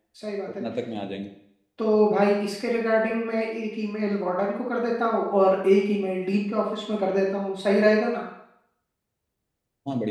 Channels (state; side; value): identical; both; correlation 1.00